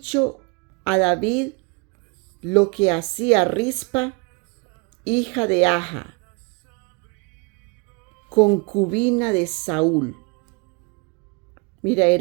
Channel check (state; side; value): quieter; left; 30.6 dB